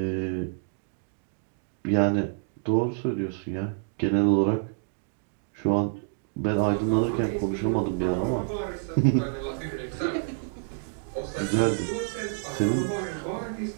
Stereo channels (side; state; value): left; silent; digital silence